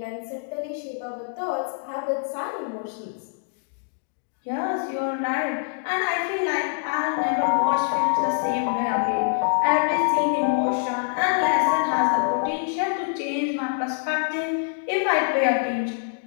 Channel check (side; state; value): right; silent; digital silence